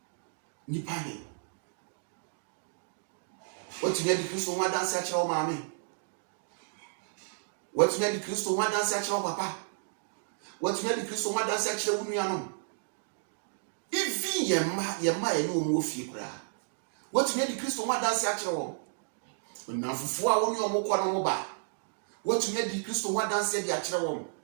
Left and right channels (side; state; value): left; silent; digital silence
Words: Nipa ni. What you need Kristo nwa dance akire wo maami. What you need Kristo nwa dance akire wo papa. What you need Kristo nwa dance akire wo nuanom. Even yemma ye no mu ofie kura. What you need Kristo nwa dance akire wo. Na fufu a woni omukwa no mo ba watumi adi Kristo wa danse de akire won